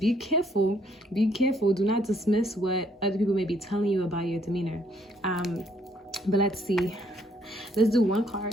careful, do not dismiss what other people may be telling you about your demeanor. But let's see, let's do one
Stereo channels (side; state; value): both; normal; correlation 0.68